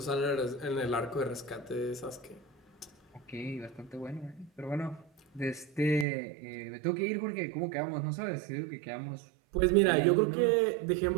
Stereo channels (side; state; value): left; drops out; at 6.1 s